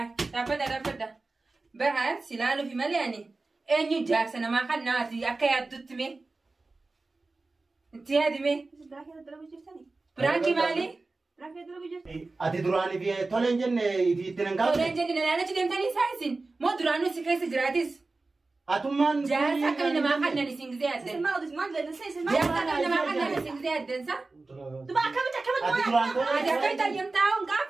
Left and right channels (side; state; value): left; quieter; 3.5 dB